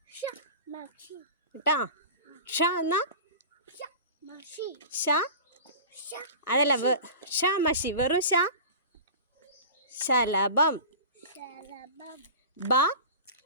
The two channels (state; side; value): inverted; both; correlation -0.35